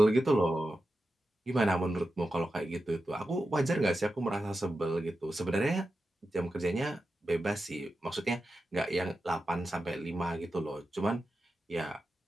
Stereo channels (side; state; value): both; normal; correlation 0.91